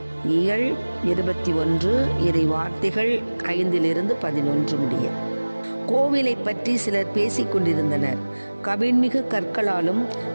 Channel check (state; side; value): inverted; both; correlation -1.00